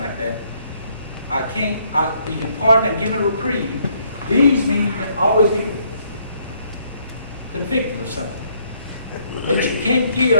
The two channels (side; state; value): both; inverted; correlation -0.68